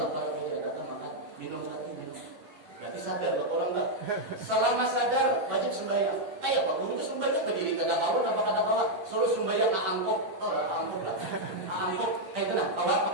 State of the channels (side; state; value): left; late; 10 ms